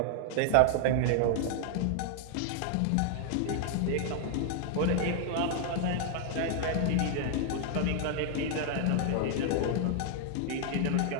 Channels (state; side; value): different; both; correlation 0.00